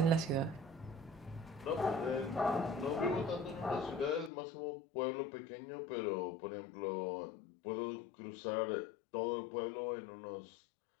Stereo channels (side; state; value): right; drops out; at 4.3 s